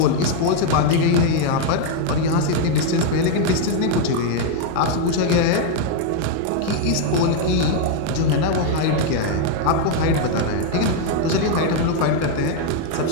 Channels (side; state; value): both; different; correlation 0.00